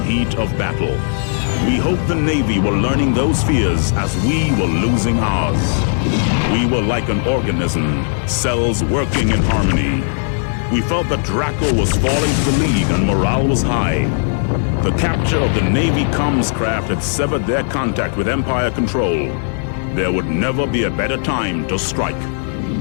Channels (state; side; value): silent; right; digital silence